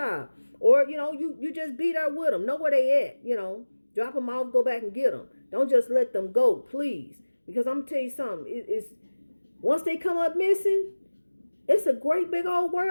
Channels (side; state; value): both; inverted; correlation -1.00